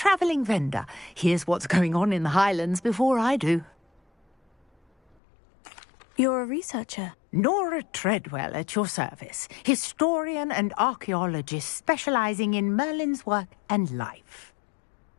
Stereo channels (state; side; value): drops out; right; at 5.2 s